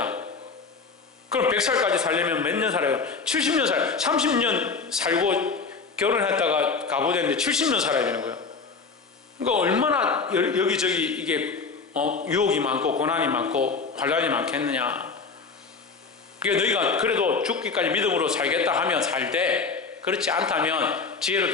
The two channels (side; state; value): right; quieter; 4.8 dB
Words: 그럼 100살까지 살려면 몇 년 살아요? 70년 살아요. 30년 살고 결혼했다가 가부됐는데 70년 살아야 되는 거예요. 그러니까 얼마나 여기저기 이게 유혹이 많고 고난이 많고 환란이 많겠느냐. 그러니까 너희가 그래도 죽기까지 믿음으로 살겠다 하면 살되 그렇지 않다면